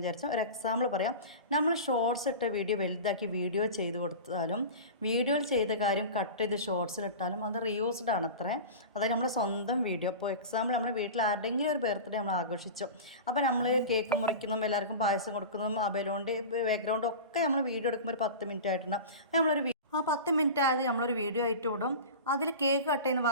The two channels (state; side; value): inverted; both; correlation -0.31